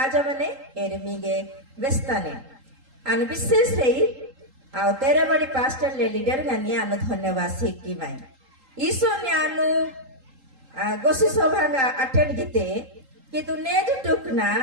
मने एरे मिगे बेस्ताने आन विशेष रही आ तेरे बड़ी पास्टर ले लीडर गनी आन धन्यवाद सिक्की माय ईसो ने आनु गोसी सभा अटेंड गिते कि तू नेज टुकना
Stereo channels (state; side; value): late; left; 3.8 ms